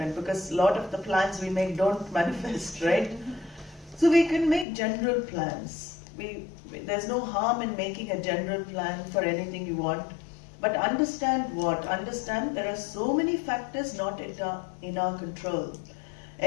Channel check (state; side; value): drops out; right; at 4.7 s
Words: because a lot of the plans we make don't manifest, right? So we can make general plans. There's no harm in making a general plan for anything you want. But understand what? Understand there are so many factors not in our control.